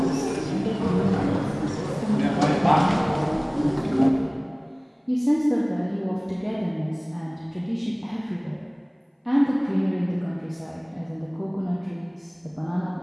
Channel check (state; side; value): identical; both; correlation 1.00